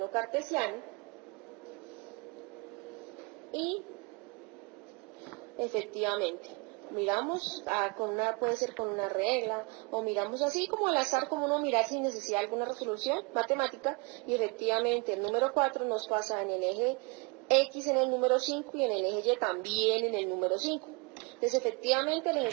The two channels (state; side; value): quieter; left; 29.8 dB